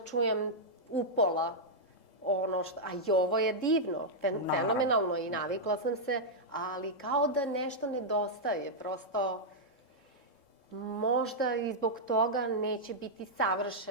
upola ono što... A i ovo je divno, fenomenalno i navikla sam se, ali kao da nešto nedostaje. Prosto, možda i zbog toga neće biti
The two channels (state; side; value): late; right; 3.7 ms